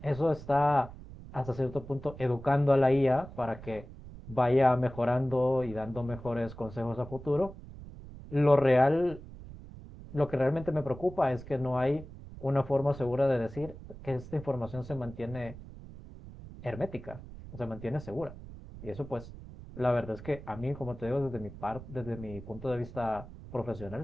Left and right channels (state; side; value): noise; right; rumble, 15 dB below the sound